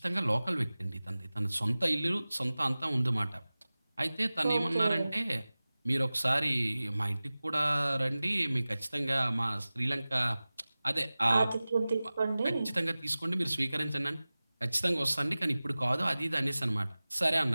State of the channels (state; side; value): inverted; both; correlation -0.98